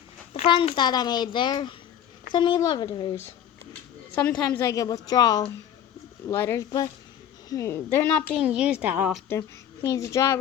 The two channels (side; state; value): right; quieter; 9.8 dB